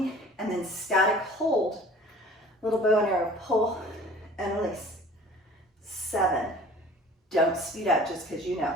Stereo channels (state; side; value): normal; both; correlation 0.47